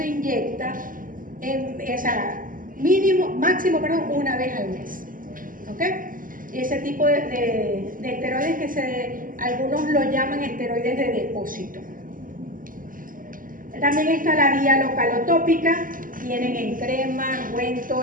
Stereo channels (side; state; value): left; late; 0.40 ms